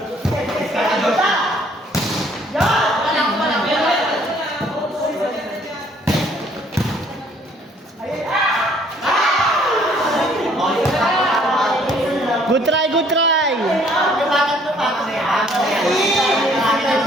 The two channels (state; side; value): normal; both; correlation 0.61